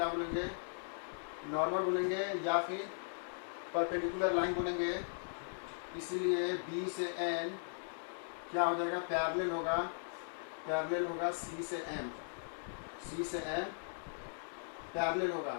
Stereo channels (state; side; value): silent; right; digital silence